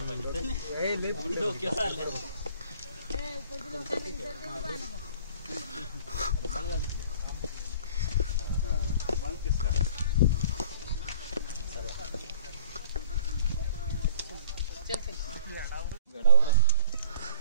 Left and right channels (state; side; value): inverted; both; correlation -0.46